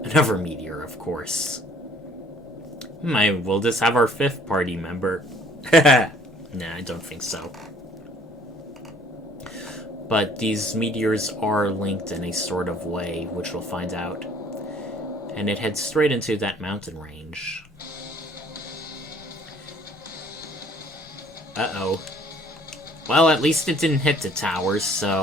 of course. Will this have our 5th party member? Nah, I don't think so. But these meteors are linked in a sort of way, which we'll find out. And it heads straight into that mountain range. Uh-oh. Well, at least it didn't hit the towers,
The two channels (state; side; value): normal; both; correlation 0.57